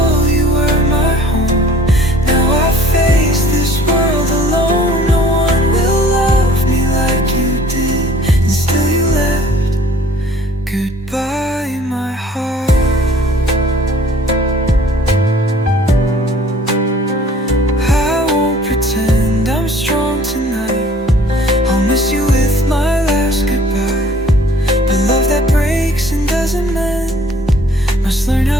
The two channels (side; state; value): both; normal; correlation 0.54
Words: you were my home. Now I face this world alone. No one will love me like you did, and still you left. Goodbye, my heart. I won't pretend I'm strong tonight. I'll miss you with my last goodbye. But love that breaks and doesn't mend must learn